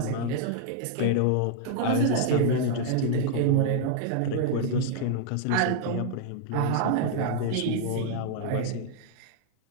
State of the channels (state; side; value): different; both; correlation -0.01